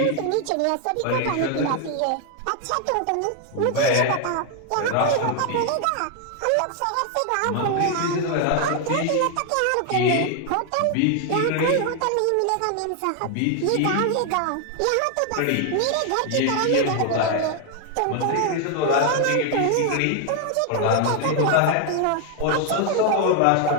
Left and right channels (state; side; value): different; both; correlation 0.00